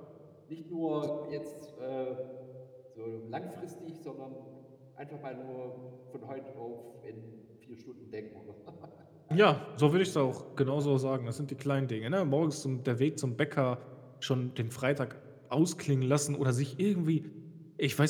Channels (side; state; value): both; identical; correlation 1.00